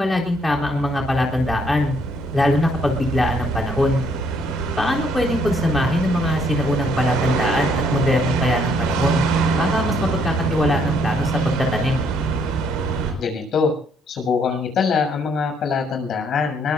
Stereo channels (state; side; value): normal; both; correlation 0.68